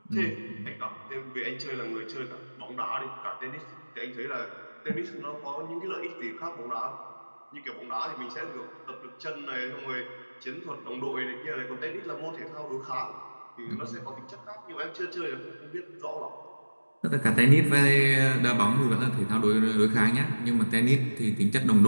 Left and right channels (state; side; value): inverted; both; correlation -1.00